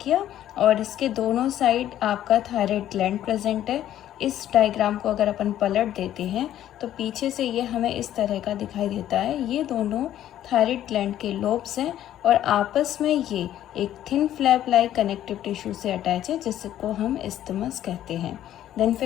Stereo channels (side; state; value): right; quieter; 12.0 dB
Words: और इसके दोनों साइड आपका थायराइड ग्लैंड प्रेजेंट है। इस डायग्राम को अगर अपन पलट देते हैं तो पीछे से ये हमें इस तरह का दिखाई देता है। ये दोनों थायराइड ग्लैंड के लोब्स हैं और आपस में ये एक thin flap like connective tissue से अटैच है जिसको हम इस्थिमस कहते हैं। देन